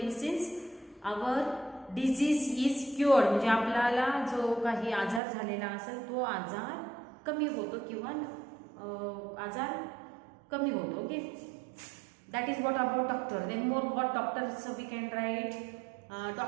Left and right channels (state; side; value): drops out; left; at 5.2 s